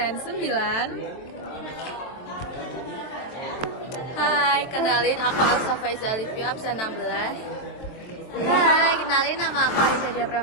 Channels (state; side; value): late; right; 23 ms